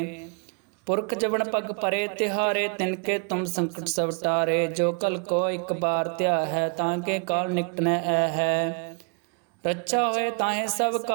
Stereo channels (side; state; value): left; quieter; 37.5 dB